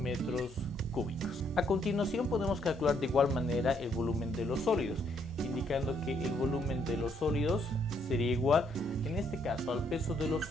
cúbicos. A continuación podemos calcular de igual manera el volumen de los sólidos, indicando que el volumen de los sólidos sería igual, en este caso, al peso de los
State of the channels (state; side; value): normal; both; correlation 0.71